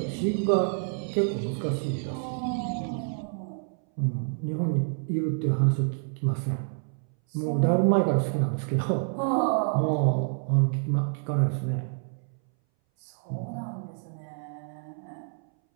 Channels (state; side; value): silent; left; 59 dB below the other